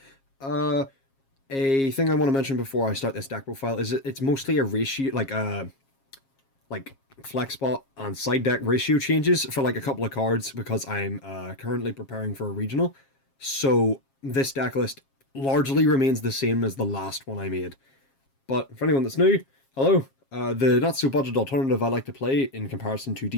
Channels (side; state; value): right; late; 7.4 ms